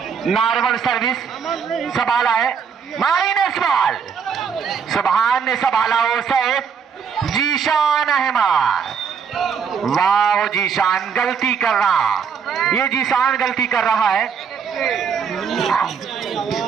नॉर्मल सर्विस संभाला है, माइनस बॉल। सुभान ने संभाला हो सैद, जीशान अहमद। वाह जीशान गलती कर रहा, ये जीशान गलती कर रहा है।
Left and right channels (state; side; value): quieter; left; 6.6 dB